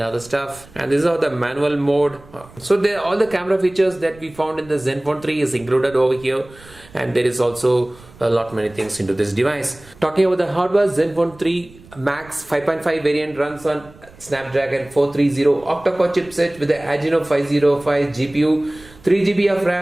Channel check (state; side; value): noise; right; rumble, 23 dB below the sound